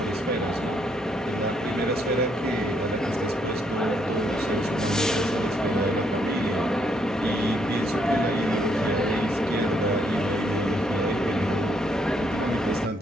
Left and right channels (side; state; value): both; normal; correlation 0.73